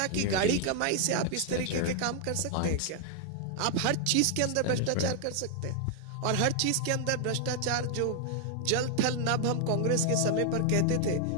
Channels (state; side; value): different; both; correlation 0.00